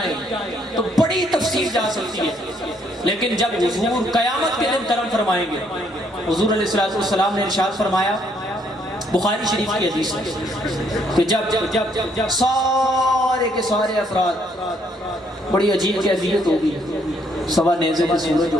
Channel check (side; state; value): both; normal; correlation 0.69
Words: تو بڑی تفصیل جا سکتی ہے، لیکن جب حضور قیامت کے دن کرم فرمائیں گے، حضور علیہ السلام نے ارشاد فرمایا، بخاری شریف کی حدیث ہے کہ جب سارے کے سارے افراد، بڑی عجیب کیفیت ہوگی، سوا نیزے کا سورج